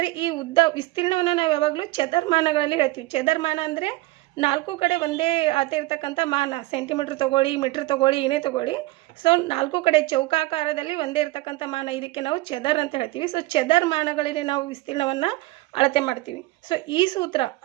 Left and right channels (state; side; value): quieter; left; 19.7 dB